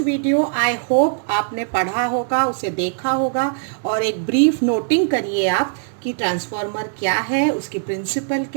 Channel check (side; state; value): left; silent; 65 dB below the other